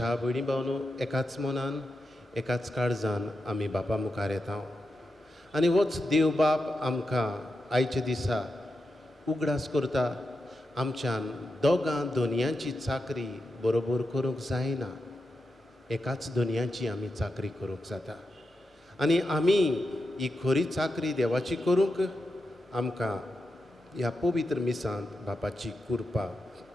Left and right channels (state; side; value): normal; both; correlation 0.88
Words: भयणी भावनो, एकाच मनान एकाच काळजान आमी बापा मुखार येता आनी होच देव बाप आमकां आयच्या दिसा उगडास करता. आमच्यान दोगां दोनयांची चाकरी बरोबर करूंक जायना, एकाच दोनयांची आमी चाकरी करूंक जाता आनी आमी ही खरी चाकरी देवाची करूंक आमकां ह्या पवित्र मिसांत बापाची कृपा